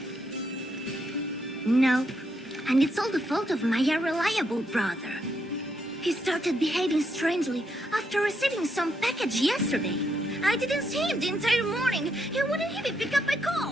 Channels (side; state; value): both; normal; correlation 0.78